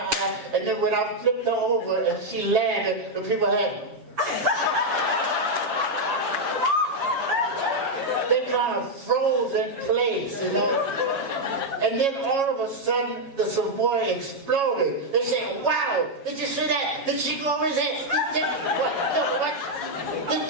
and then when I flipped her over and she landed, the people had, they everybody kind of froze in place, you know. And then all of a sudden, the Savoy exploded. They said, wow, did you see that? Did she go over his head? What? Did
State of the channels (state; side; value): late; left; 7.3 ms